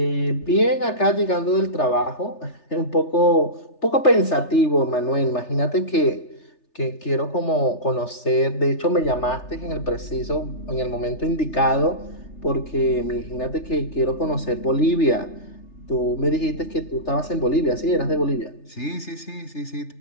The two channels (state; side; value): late; right; 3.3 ms